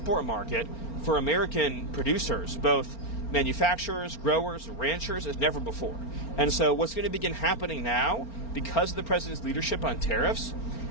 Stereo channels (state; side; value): late; right; 4.4 ms